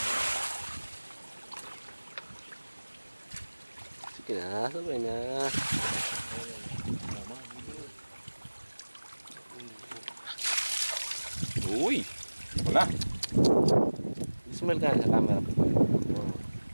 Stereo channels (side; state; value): both; inverted; correlation -1.00